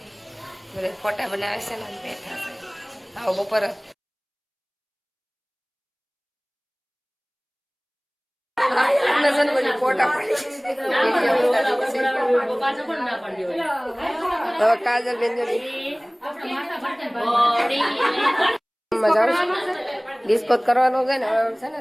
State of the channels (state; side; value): identical; both; correlation 1.00